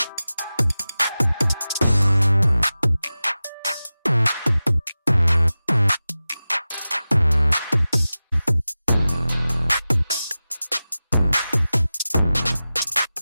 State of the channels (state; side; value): inverted; both; correlation -0.96